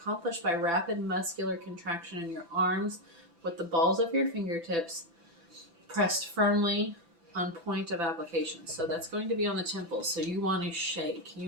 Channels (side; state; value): left; late; 6.0 ms